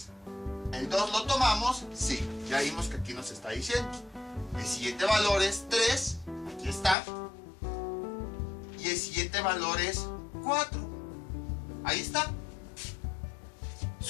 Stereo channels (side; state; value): right; drops out; at 7.0 s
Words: ¿el 2 lo tomamos? Sí, ya vimos que aquí nos está diciendo. El siguiente valor es 3, aquí está. Y el siguiente valor es 4. Ahí está.